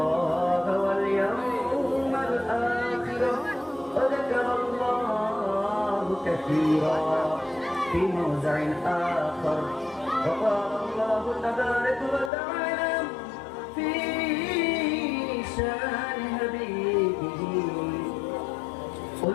واليوم الآخر وذكر الله كثيرا في موضع آخر. وقال الله تبارك وتعالى في شان حبيبه:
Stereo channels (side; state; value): right; drops out; at 12.3 s